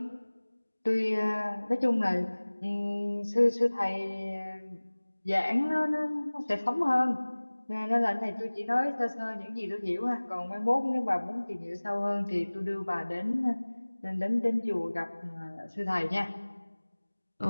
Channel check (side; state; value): both; inverted; correlation -1.00